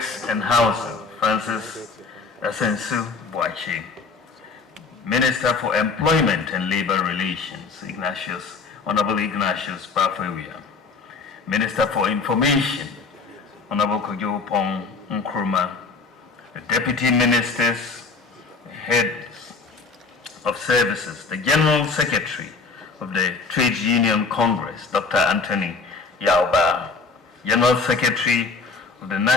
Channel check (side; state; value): right; quieter; 4.4 dB